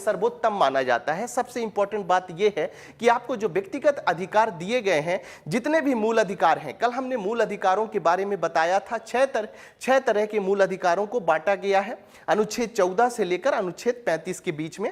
माना जाता है। सबसे इंपॉर्टेंट बात यह है कि आपको जो व्यक्तिगत अधिकार दिए गए हैं, जितने भी मूल अधिकार हैं, कल हमने मूल अधिकारों के बारे में बताया था, छह तरह के मूल अधिकारों को बांटा गया है अनुच्छेद 14 से लेकर अनुच्छेद 35 के बीच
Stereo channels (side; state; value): both; identical; correlation 1.00